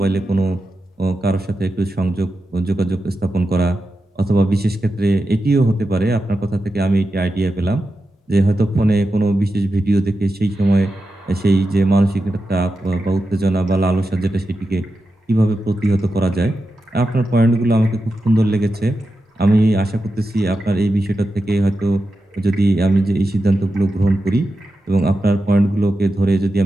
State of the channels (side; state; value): both; normal; correlation 0.90